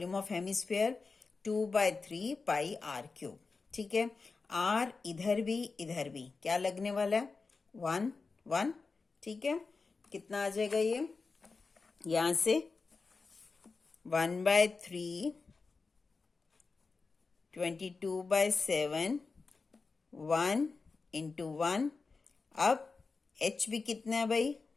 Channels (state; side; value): quieter; right; 4.3 dB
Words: of hemisphere 2/3 pi r cube. ठीक है, आर इधर भी क्या लगने वाला है? 1 1। ठीक है, कितना आ जाएगा ये? यहां से 1/3 22/7 1 इंटू 1। अब h भी कितना है भाई?